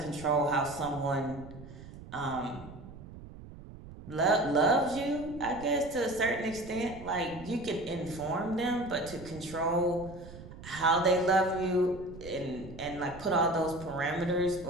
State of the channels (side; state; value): right; noise; rumble, 15 dB below the sound